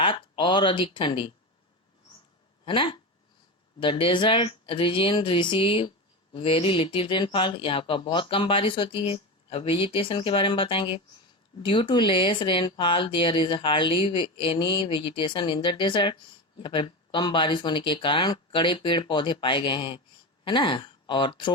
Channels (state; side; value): normal; both; correlation 0.21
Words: और अधिक ठंडी, है ना। The desert region receive very little rainfall, यहाँ का बहुत कम बारिश होती है। अब वेजिटेशन के बारे में बताएंगे। Due to less rainfall there is hardly any vegetation in the desert, यहाँ पर कम बारिश होने के कारण कड़े पेड़ पौधे पाए गए हैं, है ना। और